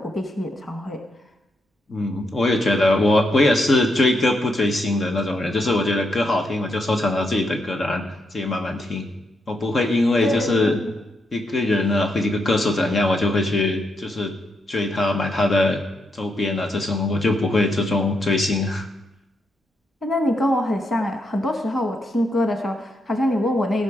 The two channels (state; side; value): normal; both; correlation 0.81